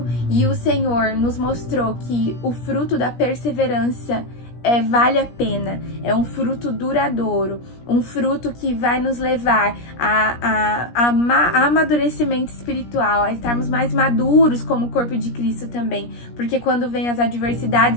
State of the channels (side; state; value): right; late; 17 ms